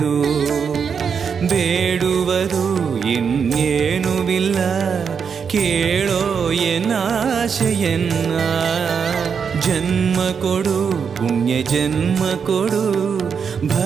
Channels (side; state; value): left; quieter; 6.5 dB